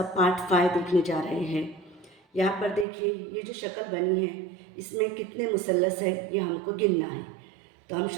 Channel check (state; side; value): drops out; left; at 2.9 s